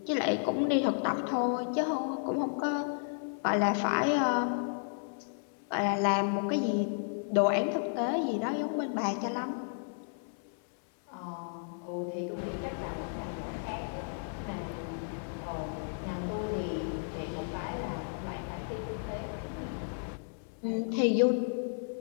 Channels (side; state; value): right; silent; 56 dB below the other